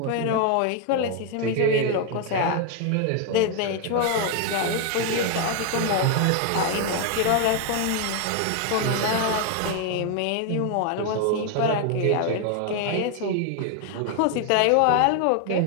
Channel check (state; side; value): different; both; correlation 0.01